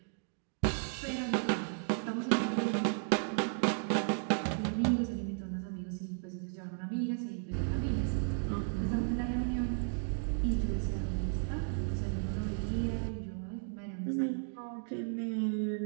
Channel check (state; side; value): silent; left; 55 dB below the other